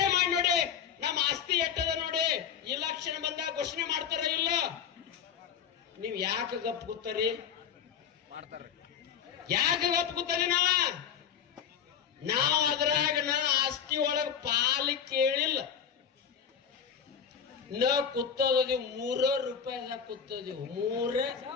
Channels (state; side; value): quieter; right; 7.9 dB